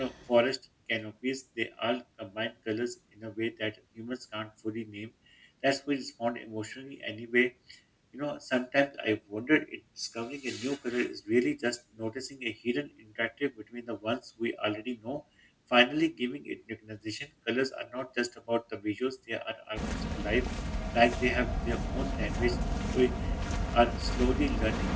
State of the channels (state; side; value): identical; both; correlation 1.00